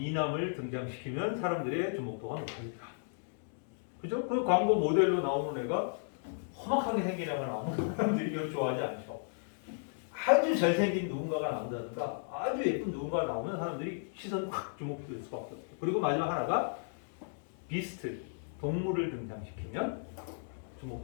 등장시키면 사람들의 주목도가 높아진다. 그죠? 그 광고 모델로 나오는 애가 험악하게 생긴 애가 나오면 사람들이 이걸 좋아하지 않죠. 아주 잘생긴 누군가가 나온다든가 아주 예쁜 누군가가 나오면 사람들이 시선이 확 주목될 수밖에 없어요. 그리고 마지막 하나가 비스트, 동물을 등장시키면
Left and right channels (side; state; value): right; silent; digital silence